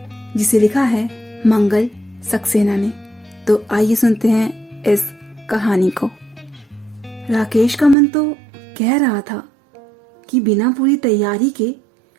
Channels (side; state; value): left; drops out; at 8.0 s